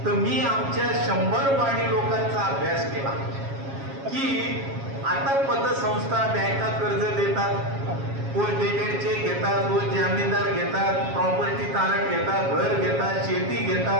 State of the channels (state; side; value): late; left; 7.3 ms